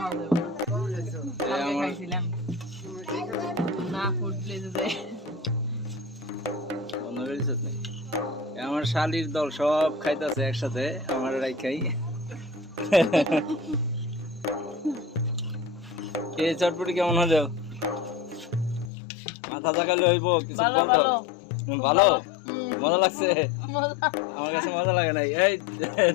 যাবে না কালকে খাইছিলাম না ফুড প্লেসে যাই বন্ধ করে দিছিস নাকি? আমার শালির দল সব খাইতেছে একসাথে আমার রাইখাই কে চটপটি কেমন হলো মাথা জাগালে হইব কিছু ভালো বলতো ভালো ভালো মজা লাগছে মজা আমার কাছে মজা লাগে নাই এই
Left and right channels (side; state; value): right; drops out; at 18.9 s